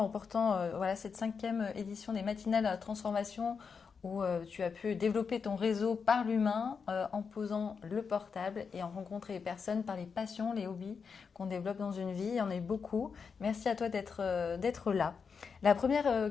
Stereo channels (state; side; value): quieter; right; 5.7 dB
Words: remportant cette 5e édition des matinales à la transformation où tu as pu développer ton réseau par l'humain en posant le portable et en rencontrer les personnes par les passions, les hobbies qu'on développe dans une vie. Il y en a eu beaucoup. Merci à toi d'être là. La